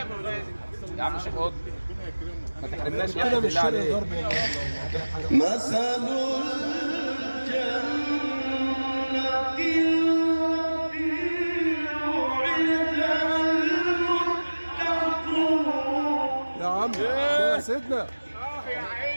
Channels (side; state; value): both; inverted; correlation -1.00